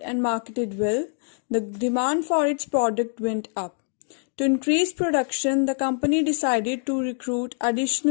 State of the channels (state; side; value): silent; right; 62 dB below the other